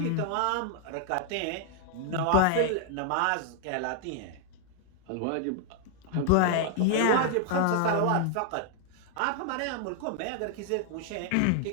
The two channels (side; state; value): both; different; correlation 0.00